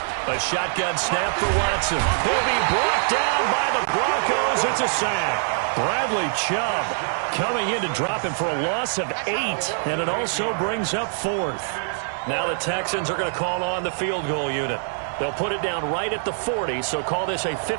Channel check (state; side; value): silent; left; 63 dB below the other